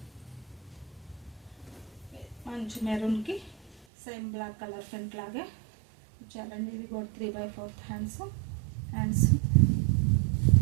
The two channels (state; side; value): drops out; left; at 3.9 s